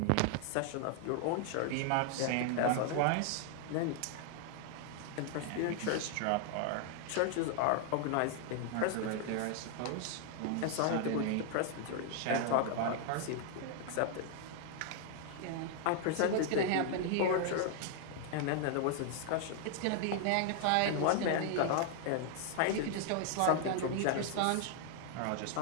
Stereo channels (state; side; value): different; both; correlation 0.00